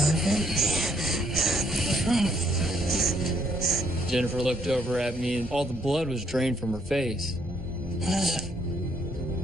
Jennifer looked over at me, and all the blood was drained from her face. What is it?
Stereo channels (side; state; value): both; normal; correlation 0.70